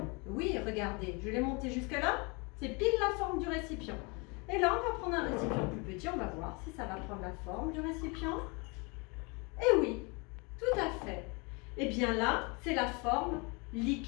Oui, regardez, je l'ai monté jusque-là. C'est pile la forme du récipient. Et là, on va prendre un récipient plus petit. On va voir si ça va prendre la forme du récipient. Et oui, tout à fait. Et bien là, c'est la forme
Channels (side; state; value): right; quieter; 30.0 dB